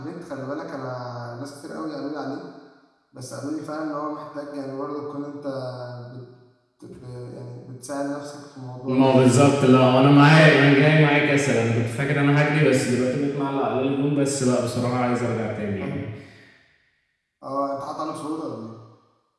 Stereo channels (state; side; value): identical; both; correlation 1.00